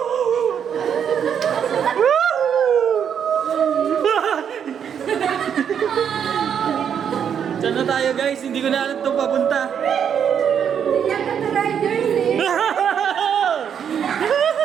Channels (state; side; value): quieter; left; 8.1 dB